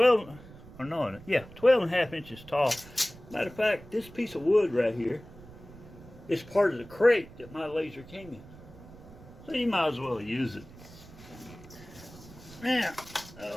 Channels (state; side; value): noise; right; rumble, 19 dB below the sound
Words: a half inches tall. Matter of fact, this piece of wood right here is part of the crate that my laser came in. So you might as well use it. Now,